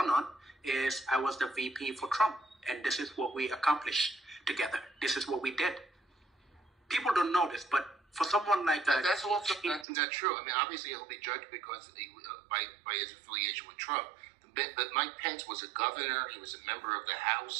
on is, I was the VP for Trump, and this is what we accomplished together. This is what we did. People don't know this, but for someone like that, that's also not true. I mean, obviously he'll be judged because by his affiliation with Trump. But Mike Pence was a governor. He was a member of the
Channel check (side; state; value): left; drops out; at 9.9 s